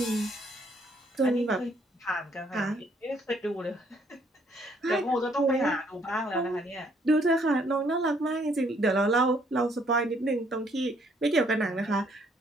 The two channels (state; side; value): normal; both; correlation 0.66